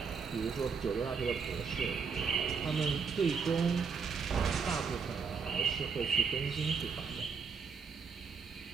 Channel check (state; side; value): quieter; left; 5.7 dB